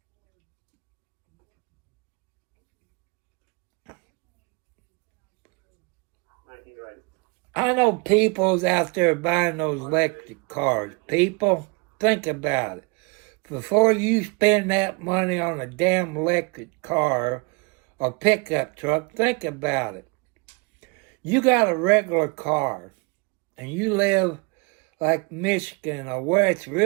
I know people's out there buying those electric cars. People, think about it. Before you spend that money on a damn electric car or pickup truck, think about it. You got a regular car and you live like Michigan or where it's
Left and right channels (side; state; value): left; quieter; 30.8 dB